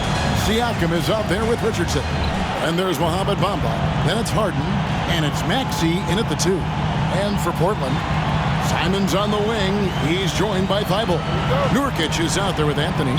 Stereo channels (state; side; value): identical; both; correlation 1.00